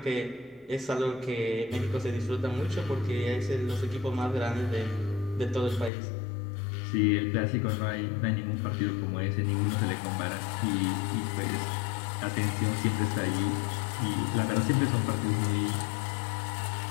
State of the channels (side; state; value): right; drops out; at 5.9 s